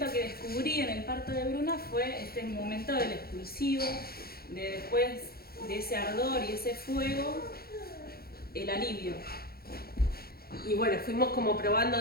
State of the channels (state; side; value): late; right; 0.44 ms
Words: que descubrí en el parto de Bruna fue este momento del expulsivo, de después de ese ardor y ese fuego, el alivio. Y bueno, fuimos como probando